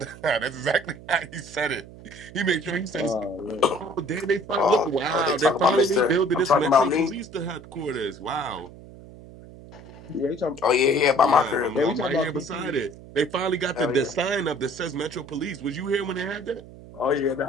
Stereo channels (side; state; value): right; noise; hum, 18 dB below the sound